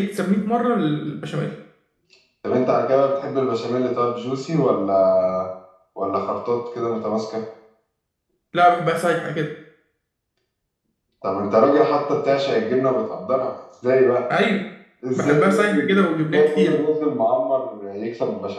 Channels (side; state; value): both; identical; correlation 1.00